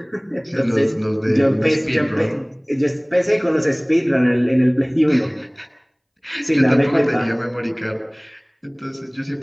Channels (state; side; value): identical; both; correlation 1.00